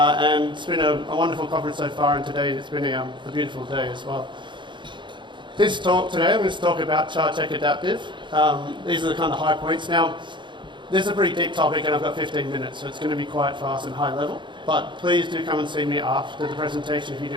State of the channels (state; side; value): late; left; 0.23 ms